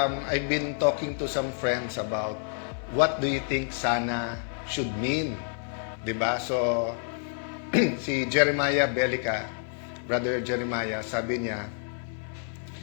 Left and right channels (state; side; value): silent; right; 59 dB below the other